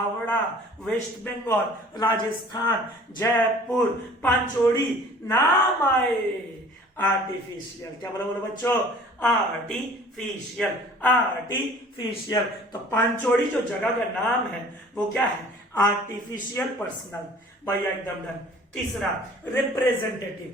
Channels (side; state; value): both; normal; correlation 0.49